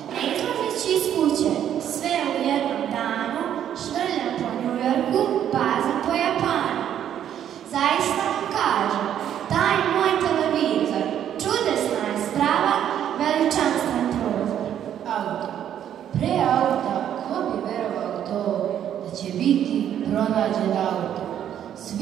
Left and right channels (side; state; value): left; quieter; 10.1 dB